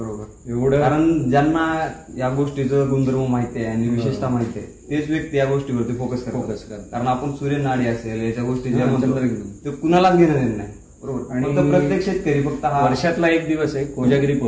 एवढं कारण ज्यांना या गोष्टीचं गुणधर्म माहिती आहे आणि विशेषता माहिती आहे तेच व्यक्ती या गोष्टीवरती फोकस करतात. कारण आपण सूर्यनाडी असेल याच्या गोष्टी ज्या म्हणतो ते कुणालाच घेणं देणं नाही. बरोबर. आणि फक्त प्रत्येक शेतकरी फक्त हा वर्षातला एक दिवस आहे कोजागिरी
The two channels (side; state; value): both; identical; correlation 1.00